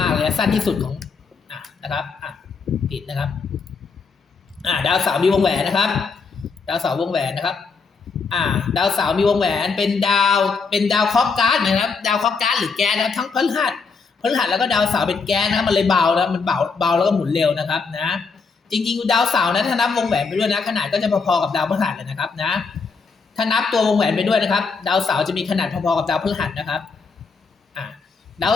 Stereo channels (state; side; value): quieter; right; 4.9 dB